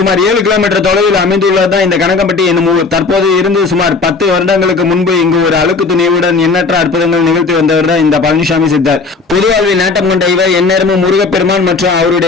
7 கிலோமீட்டர் தொலைவில் அமைந்துள்ளதுதான் இந்த கனகம்பட்டி என்னும் ஊர். தற்போது இருந்து சுமார் 10 வருடங்களுக்கு முன்பு இங்கு ஒரு அழுக்கு துணியுடன் எண்ணற்ற அற்புதங்கள் நிகழ்த்தி வந்தவர் தான் இந்த பழனிசாமி சித்தர். பொதுவாழ்வில் நாட்டம் கொண்ட இவர் எந்நேரமும் முருகப்பெருமான் மற்றும்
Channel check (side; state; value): right; quieter; 4.2 dB